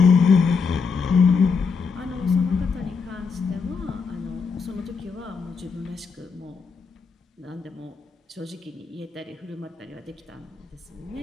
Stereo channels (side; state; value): right; quieter; 5.2 dB